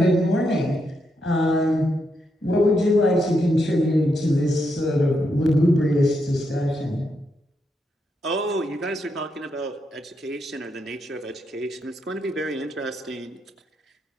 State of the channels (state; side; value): normal; both; correlation 0.81